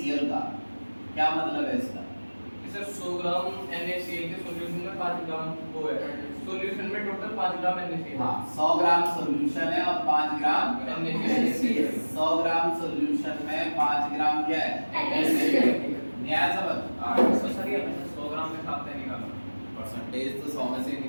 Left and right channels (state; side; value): inverted; both; correlation -1.00